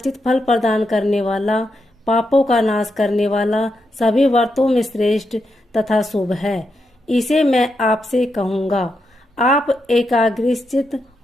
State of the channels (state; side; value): normal; both; correlation 0.84